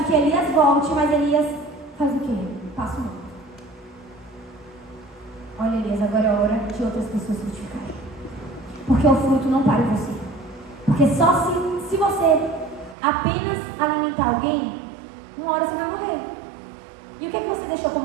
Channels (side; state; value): left; drops out; at 13.0 s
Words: que Elias volte, mas Elias faz o quê? Passa o mundo. Olha, Elias, agora é hora de outras pessoas frutificarem. Porque o fruto não para em você. Porque só se você apenas alimentar alguém, uma hora você vai morrer. E o que é que você deixou